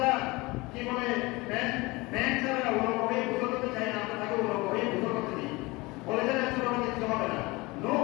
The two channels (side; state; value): right; quieter; 23.2 dB